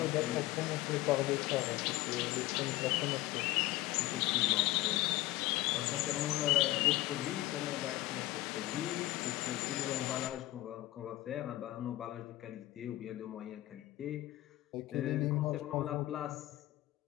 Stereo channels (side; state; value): right; quieter; 17.1 dB